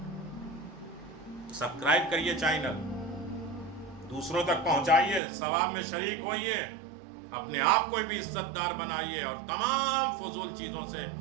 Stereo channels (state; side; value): drops out; left; at 5.2 s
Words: سبسکرائب کریے چینل، دوسروں تک پہنچائیے، ثواب میں شریک ہوئیے، اپنے آپ کو بھی عزت دار بنائیے اور تمام فضول چیزوں سے